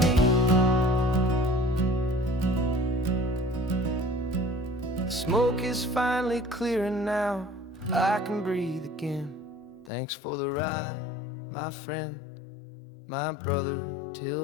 me. The smoke is finally clearing now, I can breathe again. Thanks for the ride, my friend, my brother,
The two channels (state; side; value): drops out; right; at 9.9 s